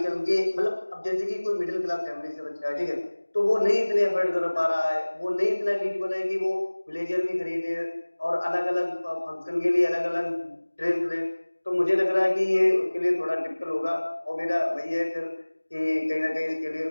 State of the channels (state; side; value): inverted; both; correlation -1.00